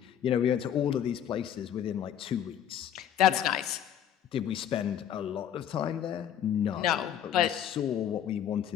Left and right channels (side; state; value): right; quieter; 10.0 dB